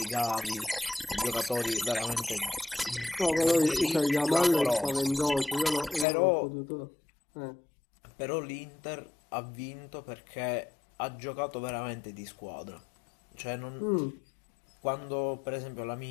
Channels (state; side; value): drops out; right; at 6.1 s